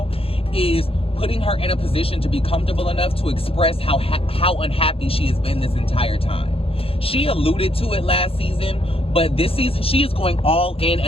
is putting her in a position to be comfortable enough to express how unhappy she has been this entire time. She alluded to it last season, but this season she is going all in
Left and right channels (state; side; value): late; right; 0.27 ms